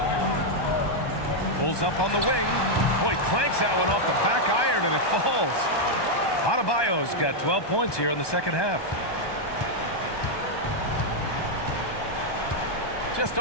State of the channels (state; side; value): late; right; 1.2 ms